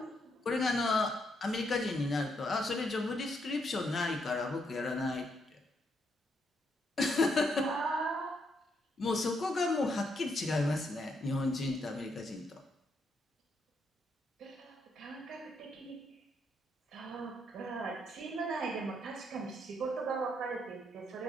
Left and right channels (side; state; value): both; normal; correlation 0.77